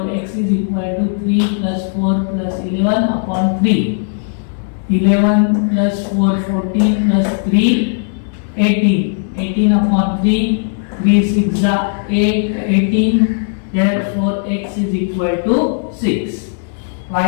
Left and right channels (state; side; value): silent; right; digital silence